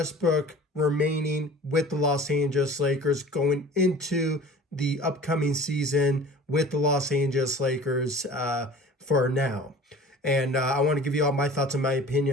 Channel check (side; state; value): both; normal; correlation 0.42